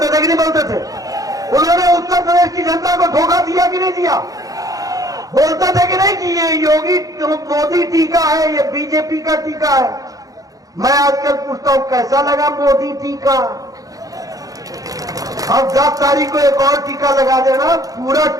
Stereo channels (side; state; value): left; late; 0.17 ms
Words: थे कि नहीं बोलते थे? उन्होंने उत्तर प्रदेश की जनता को धोखा दिया कि नहीं दिया? बोलते थे कि नहीं कि ये योगी मोदी टीका है, ये बीजेपी का टीका है? मैं आजकल पूछता हूं कैसा लगा मोदी टीका? अब 10 तारीख को एक और टीका लगा देना, पूरा